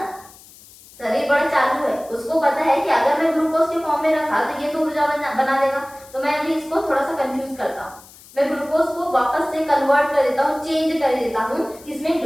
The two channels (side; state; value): left; noise; hiss, 22 dB below the sound